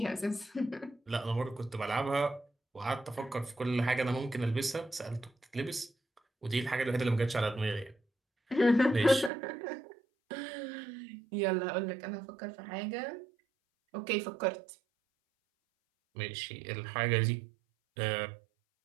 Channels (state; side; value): drops out; left; at 9.3 s